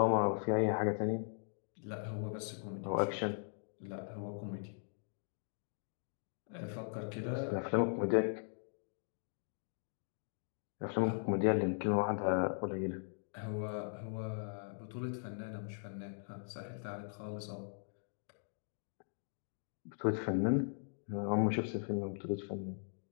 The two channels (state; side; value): silent; right; digital silence